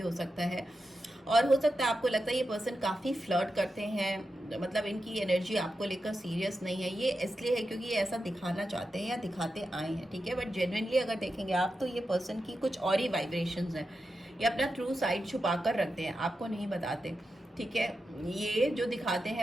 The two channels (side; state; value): both; normal; correlation 0.89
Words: हो सकता है। और हो सकता है आपको लगता है ये पर्सन काफ़ी फ्लर्ट करते हैं, मतलब इनकी एनर्जी आपको लेकर सीरियस नहीं है। ये इसलिए है क्योंकि ये ऐसा दिखाना चाहते हैं या दिखाते आए हैं, ठीक है। बट जेन्युइनली अगर देखेंगे आप तो ये पर्सन की कुछ और ही वाइब्रेशंस हैं, ये अपना ट्रू साइड छुपा कर रखते हैं, आपको नहीं बताते, ठीक है। ये जो दिखाते